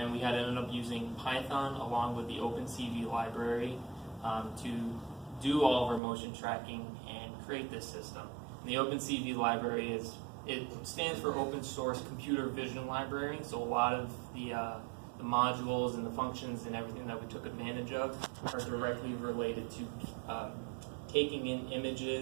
we had ended up using Python along with the OpenCV library to do all of our motion tracking and create this system. And the OpenCV library stands for Open Source Computer Vision Library. So a lot of the modules and the functions and everything that we took advantage of are directly related to taking in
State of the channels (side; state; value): left; drops out; at 6.0 s